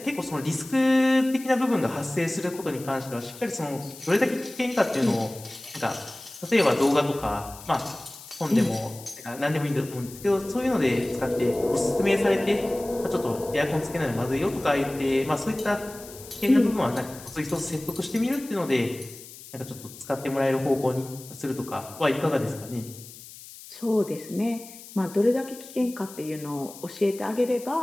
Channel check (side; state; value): left; noise; hiss, 17 dB below the sound